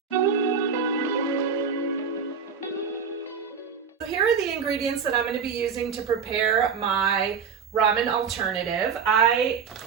So here are the ingredients that I'm going to be using to prepare my ramen alternative. I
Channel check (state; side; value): quieter; left; 6.1 dB